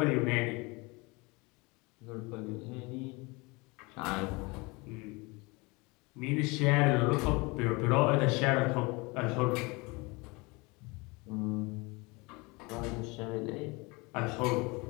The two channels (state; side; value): quieter; right; 26.1 dB